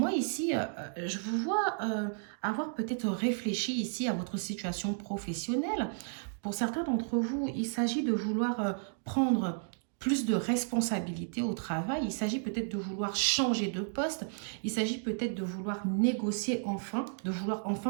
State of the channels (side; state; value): left; silent; digital silence